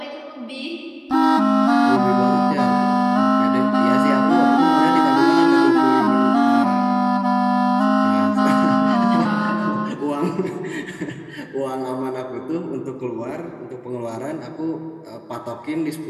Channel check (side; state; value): both; identical; correlation 1.00